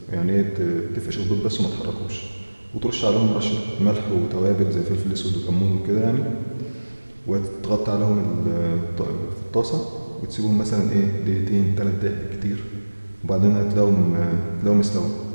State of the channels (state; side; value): inverted; both; correlation -1.00